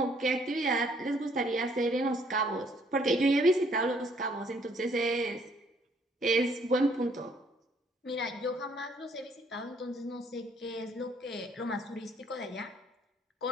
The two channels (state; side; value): normal; both; correlation 0.65